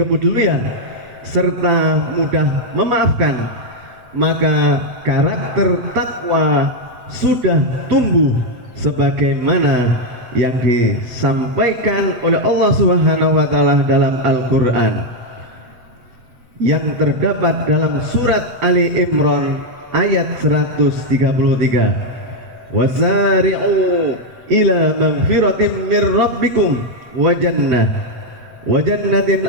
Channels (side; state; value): left; late; 8.2 ms